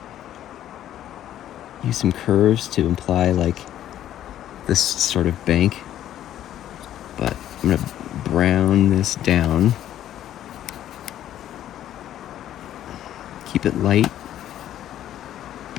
Use some curves to imply like this sort of bank. But I'm going to brown this down. Keep it light,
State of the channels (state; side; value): quieter; right; 11.8 dB